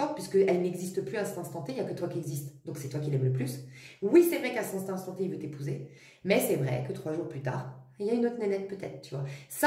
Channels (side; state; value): both; identical; correlation 1.00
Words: puisqu'elles n'existent plus à cet instant T, il n'y a que toi qui existe. Donc c'est toi qui l'aimes le plus. Oui, c'est vrai qu'à cet instant T, il veut t'épouser, mais c'est vrai que 3 jours plus tard, il y a une autre nénette peut-être, tu vois.